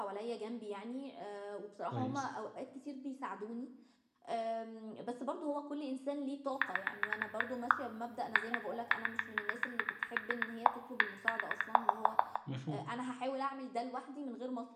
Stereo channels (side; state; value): both; identical; correlation 1.00